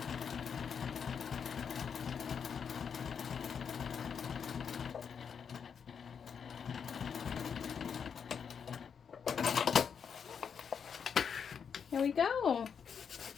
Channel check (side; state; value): right; quieter; 6.9 dB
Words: Here we go.